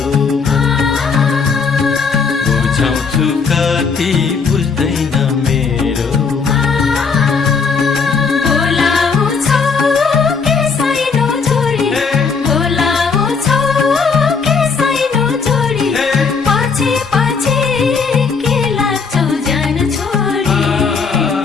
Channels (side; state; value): right; quieter; 5.3 dB